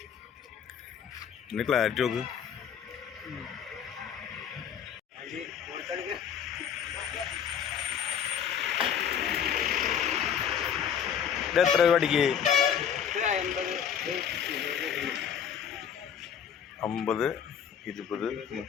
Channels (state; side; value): quieter; right; 8.2 dB